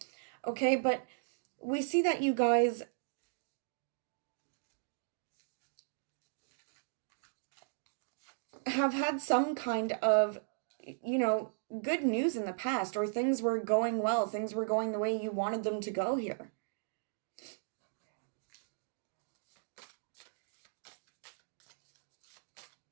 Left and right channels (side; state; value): left; silent; digital silence